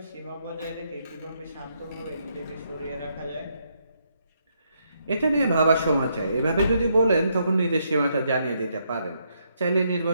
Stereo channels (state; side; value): inverted; both; correlation -0.76